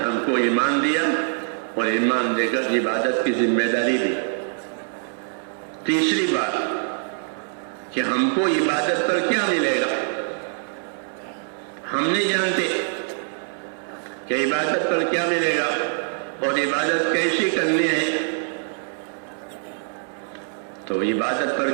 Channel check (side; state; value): left; silent; 60 dB below the other